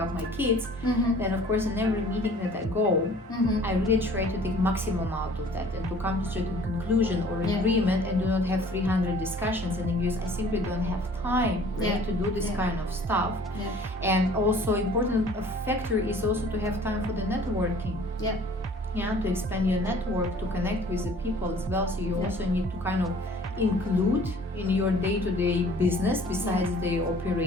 my kids, then of course in every meeting that I go, I really try to take maximum out of that and to come to a certain conclusion or agreement, and do not have 300 discussions, and because I simply don't have time to do this kind of stuff. And also important factor is also to have time for the networking. To expand your network, to connect with the people as well. So you also need to kind of include in your day-to-day business besides the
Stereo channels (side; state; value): both; normal; correlation 0.51